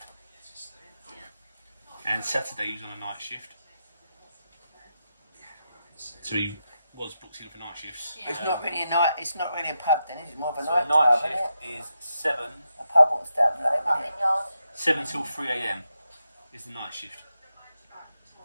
And Saturday he was on a night shift. So he was booked in for night shifts. Yeah. It's not really a night. It's not really a pub then. It's more of a So night a night club, isn't it? shift is 7 A pub won't stand late, will it? Yard. 7 till 3 a.m. is the night shift.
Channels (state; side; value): inverted; both; correlation -0.86